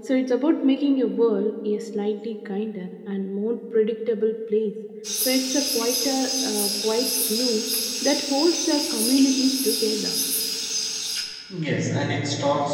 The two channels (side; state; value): both; identical; correlation 1.00